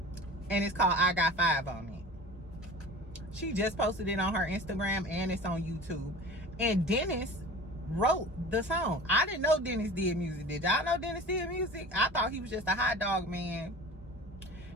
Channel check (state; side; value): normal; both; correlation 0.38